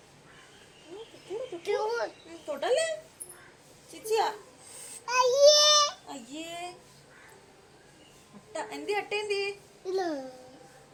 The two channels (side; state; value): both; identical; correlation 1.00